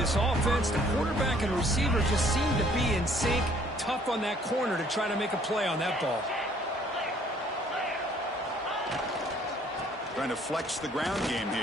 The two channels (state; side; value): normal; both; correlation 0.60